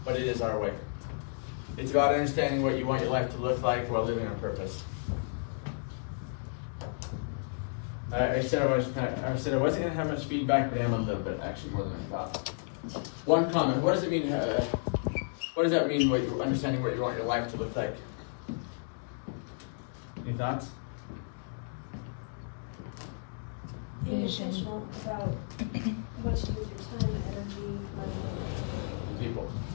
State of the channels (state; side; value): silent; right; digital silence